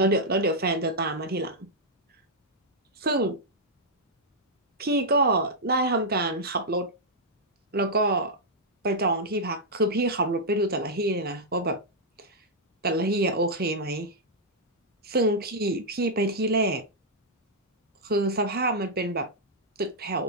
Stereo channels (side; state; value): both; normal; correlation -0.07